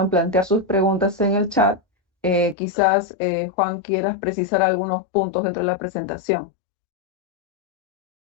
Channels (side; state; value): right; drops out; at 2.6 s